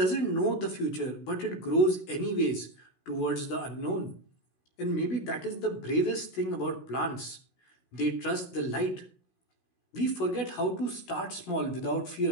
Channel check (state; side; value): late; right; 16 ms